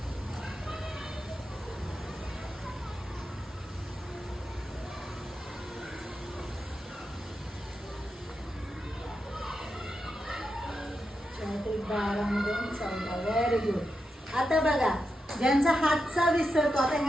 Very good. आता बघा ज्यांचा हातचा विसरतो, आता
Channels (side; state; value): both; normal; correlation 0.87